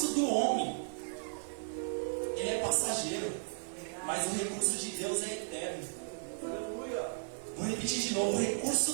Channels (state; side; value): silent; left; 54 dB below the other